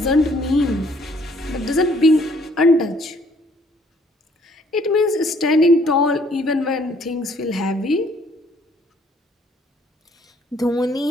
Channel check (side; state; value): both; normal; correlation 0.63